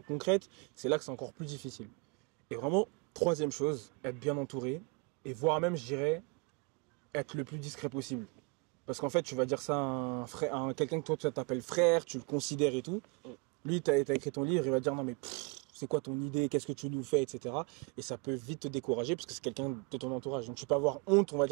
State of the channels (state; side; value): quieter; left; 32.0 dB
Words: concrètes. C'est là que c'est encore plus difficile. Et vraiment, troisième chose, être bien entouré. Et voire même, je dirais, être le plus discret possible. Parce qu'en fait, tu vas dire ça à quelqu'un que toi, tu t'appelles frère, tu le considères et tout. Lui, tu as écrit ton livre, il va dire non mais c'est quoi ton idée, qu'est-ce que tu nous fais, etc. Et ça peut vite te décourager parce que c'est quelqu'un de ton entourage. Donc tu peux avoir honte, on va